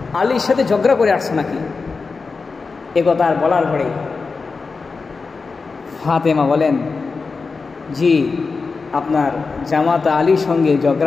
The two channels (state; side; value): quieter; right; 4.4 dB